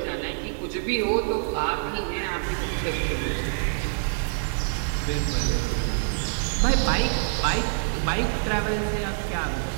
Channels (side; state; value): left; silent; digital silence